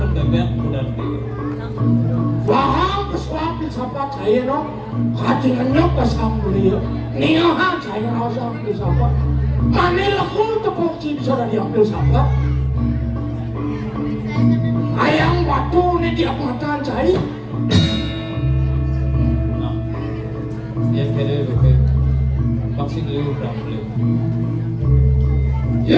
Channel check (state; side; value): identical; both; correlation 1.00